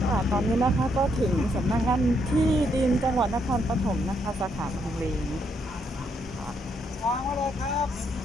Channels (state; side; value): normal; both; correlation 0.75